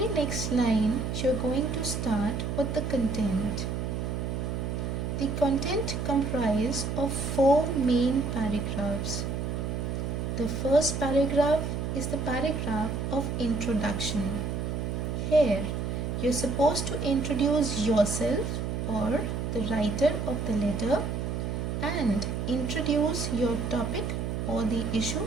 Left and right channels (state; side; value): noise; right; hum, 2 dB below the sound